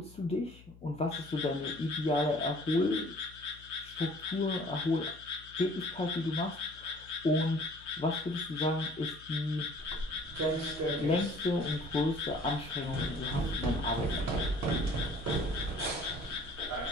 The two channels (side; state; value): left; noise; hum, 21 dB below the sound